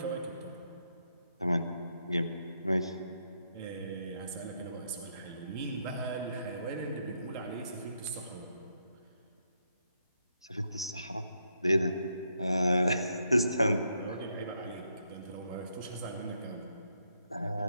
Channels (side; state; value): both; inverted; correlation -0.77